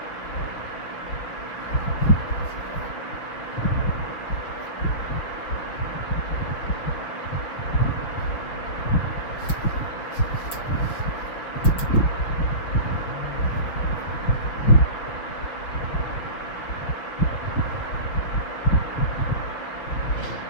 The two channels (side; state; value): right; late; 6.4 ms